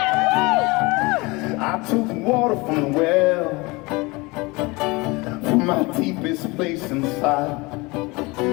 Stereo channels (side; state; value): right; quieter; 24.6 dB